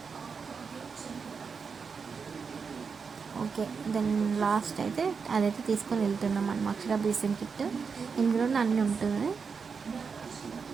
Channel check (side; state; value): left; quieter; 5.6 dB